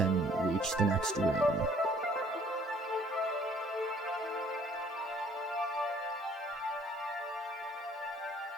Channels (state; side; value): normal; both; correlation 0.58